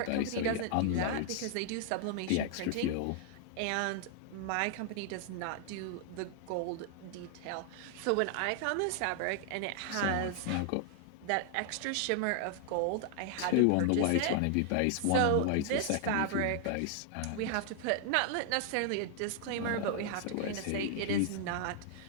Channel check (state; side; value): different; both; correlation 0.00